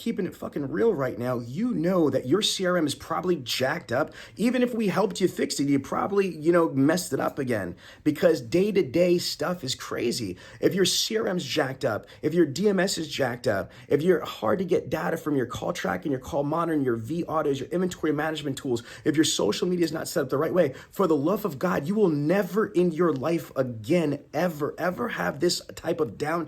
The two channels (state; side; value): identical; both; correlation 1.00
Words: it fucking real right now, you know that your CRM is probably jacked up. Even if we helped you fix it, you probably, messed it up again, because day-to-day stuff is crazy. If your CRM's jacked up, if your DMS is jacked up, if you're hard to get data from your call track and your call monitoring, your V autos, your inventory management tools, if your social media is not set up the right way, for the love of God, you will never in your life again, ever have this type of